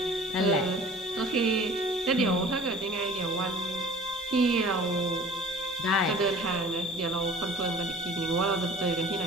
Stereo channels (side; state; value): both; normal; correlation 0.45